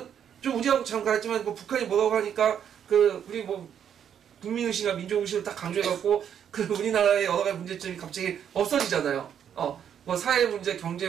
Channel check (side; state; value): left; quieter; 8.8 dB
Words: 좀 우리하고 잠깐 했지만 북한이 뭐라고 하니까 우리 국민의식이나 민족의식을 딱 강조해갖고 우리나라의 여러 가지 문제점이 갑자기 없어지잖아요. 사회 문제, 경제